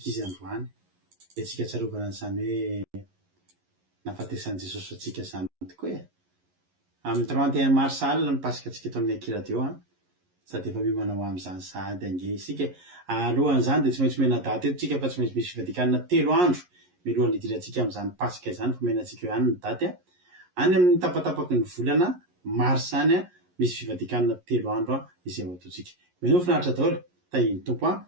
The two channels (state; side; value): late; left; 11 ms